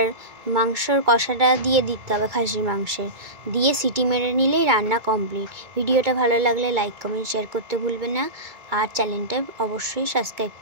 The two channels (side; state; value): left; late; 2.3 ms